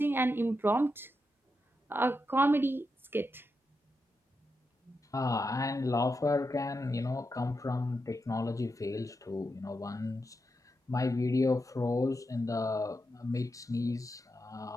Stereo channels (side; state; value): both; normal; correlation 0.86